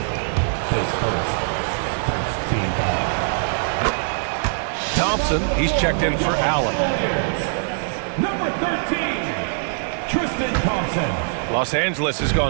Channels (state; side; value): silent; left; digital silence